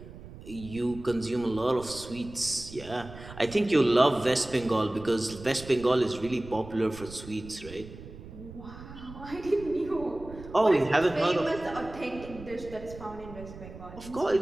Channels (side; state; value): right; noise; rumble, 15 dB below the sound